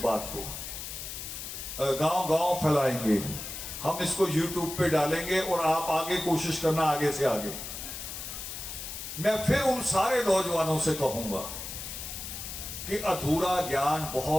बात को, गांव गांव फैलाएंगे। हम इसको YouTube पे डालेंगे और आप आगे कोशिश करना, आगे से आगे। मैं फिर उन सारे नौजवानों से कहूंगा कि अधूरा ज्ञान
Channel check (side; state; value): left; noise; hiss, 8 dB below the sound